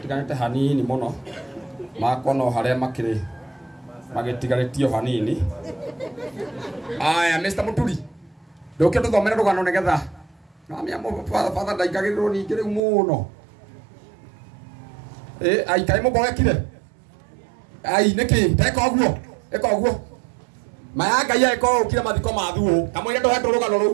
hanini mũno makwa no harĩa makĩrĩ magĩtigarĩtio hanini. Aya Mr. Muturi ndoke tũthomere rũgano nĩgetha namia father ndaingagĩrĩrwo ningĩ rĩu mũno. Ai kaĩ mũgoekire ai nĩkĩ teka ũguo eka ũguo maya Ngai eka ũkire mathiko mathuo kamwĩre ndohetwo rũgano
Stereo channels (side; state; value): left; drops out; at 12.8 s